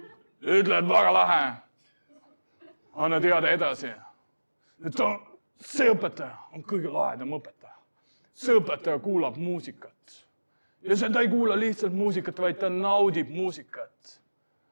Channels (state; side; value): inverted; both; correlation -1.00